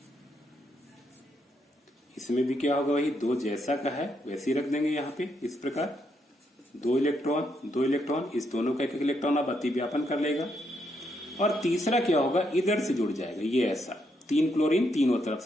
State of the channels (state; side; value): normal; both; correlation 0.77